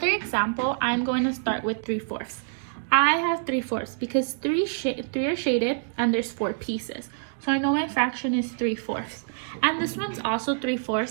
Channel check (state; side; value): silent; left; digital silence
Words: example, I'm going to start with 3/4. I have 3/4 because three are shaded and there's 4 pieces. So I know my fraction is 3/4. And this one's also